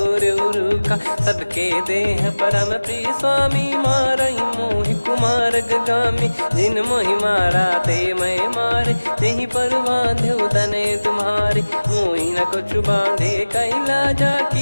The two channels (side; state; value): both; inverted; correlation -1.00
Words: उरुखा सबके देह परम प्रिय स्वामी मारई मोहि कुमार गामी जिन मोहि मारा ते मैं मारे तेहि पर बांधे तने तुम्हारे मोहि न कुछ बांधे कैला जा